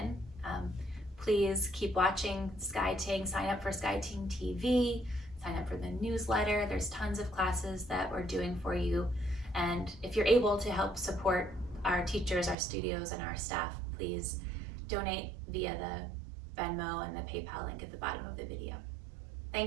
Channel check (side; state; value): left; drops out; at 12.6 s